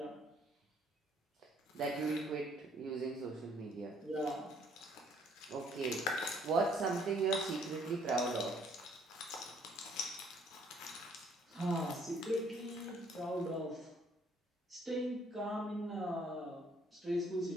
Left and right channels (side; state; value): both; normal; correlation 0.63